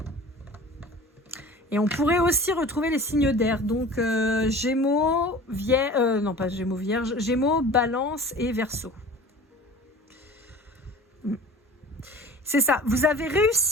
Et on pourrait aussi retrouver les signes d'air. Donc Gémeaux, Vierge, non pas Gémeaux, Vierge, Gémeaux, Balance et Verseau. C'est ça. Vous avez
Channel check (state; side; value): normal; both; correlation 0.41